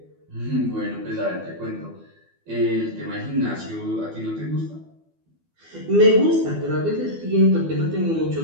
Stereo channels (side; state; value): left; late; 12 ms